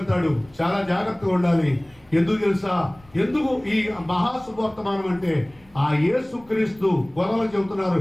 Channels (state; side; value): noise; left; rumble, 27 dB below the sound